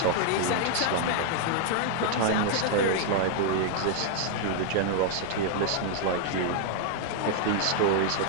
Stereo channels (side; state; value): both; different; correlation 0.00